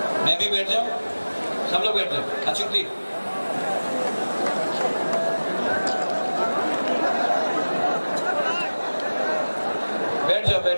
मैं भी बैठ जाऊं, सब लोग बैठ जाओ। अचुक्ति बैठ जाओ,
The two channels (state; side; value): inverted; both; correlation -1.00